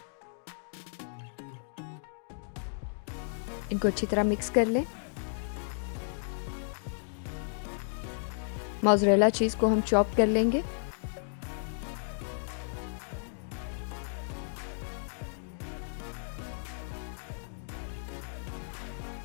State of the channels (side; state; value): right; silent; digital silence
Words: इनको अच्छी तरह मिक्स कर लें. मोज़रेला चीज़ को हम चॉप कर लेंगे.